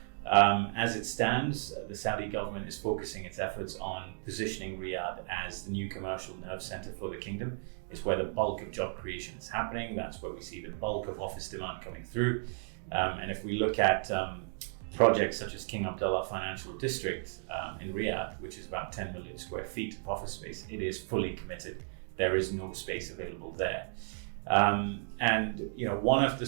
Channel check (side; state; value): left; silent; 55 dB below the other